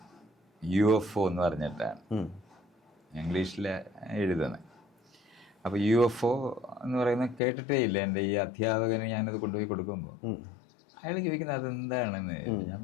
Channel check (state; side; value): drops out; right; at 7.4 s